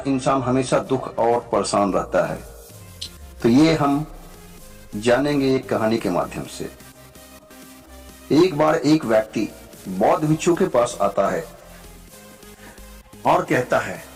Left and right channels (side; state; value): both; identical; correlation 1.00